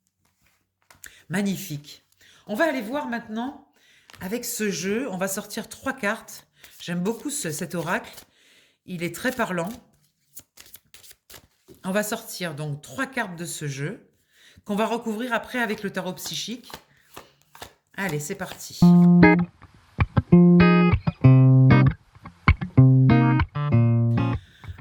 Magnifique. On va aller voir maintenant. Avec ce jeu, on va sortir 3 cartes. J'aime beaucoup cet oracle. Il est très parlant. On va sortir donc 3 cartes de ce jeu qu'on va recouvrir après avec le tarot psychique. Allez, c'est parti.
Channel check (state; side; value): identical; both; correlation 1.00